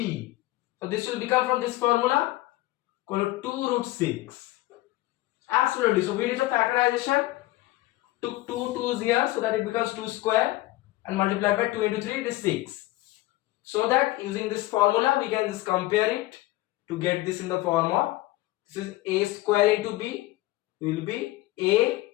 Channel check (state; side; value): quieter; right; 17.8 dB